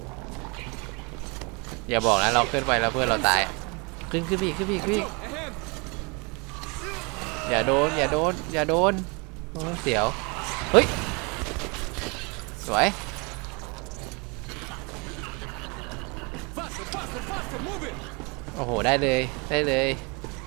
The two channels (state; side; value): quieter; left; 30.6 dB